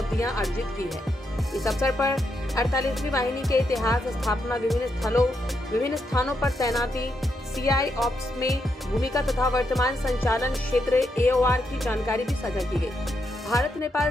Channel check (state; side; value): normal; both; correlation 0.81